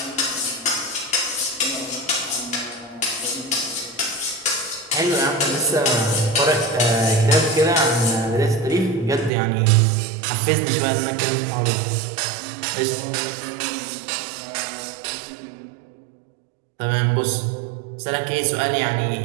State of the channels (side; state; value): left; drops out; at 9.3 s